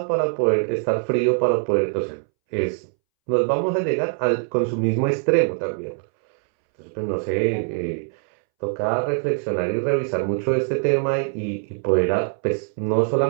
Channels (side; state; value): left; silent; 63 dB below the other